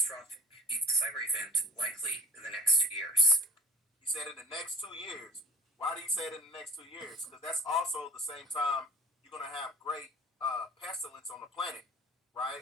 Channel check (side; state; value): both; normal; correlation 0.41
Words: cyber event likely in the next 2 years. He said in the next 2 years. Why do you say it in the next 2 years? Because that's also the same time you're going to have great pestilence on the planet,